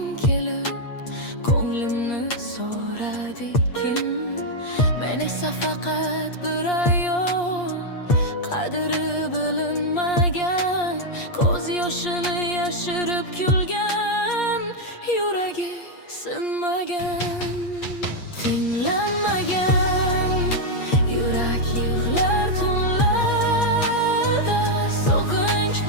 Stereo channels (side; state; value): right; late; 8.5 ms